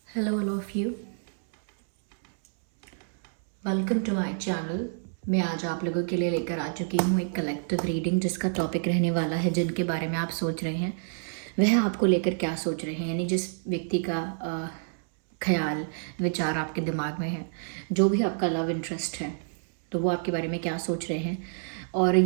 Hello all of you. Welcome to my channel. मैं आज आप लोगों के लिए लेकर आ चुकी हूँ एक कलेक्टिव रीडिंग जिसका टॉपिक रहने वाला है जिनके बारे में आप सोच रहे हैं वह आपको लेकर क्या सोच रहे हैं, यानी जिस व्यक्ति का ख्याल विचार आपके दिमाग में है, जो भी आपका लव इंटरेस्ट है, तो वो आपके बारे में क्या सोच रहे हैं। और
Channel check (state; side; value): silent; left; 59 dB below the other